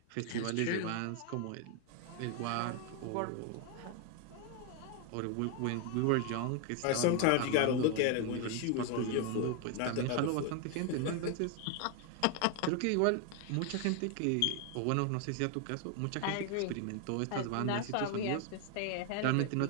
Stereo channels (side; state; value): both; different; correlation 0.01